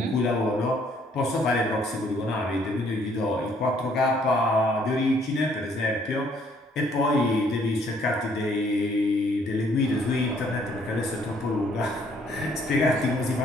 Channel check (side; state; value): both; normal; correlation 0.65